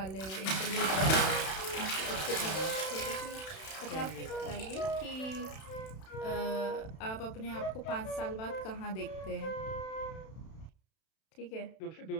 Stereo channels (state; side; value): late; right; 31 ms